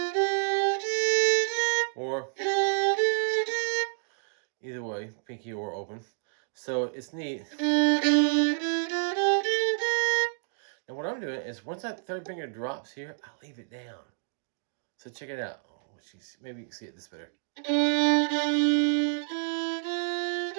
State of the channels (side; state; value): left; silent; digital silence